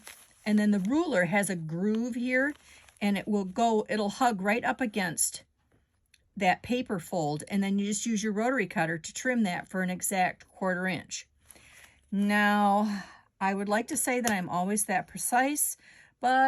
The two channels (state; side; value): identical; both; correlation 1.00